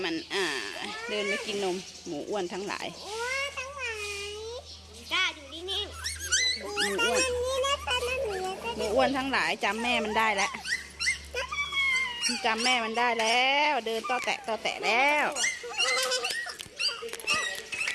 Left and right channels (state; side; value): identical; both; correlation 1.00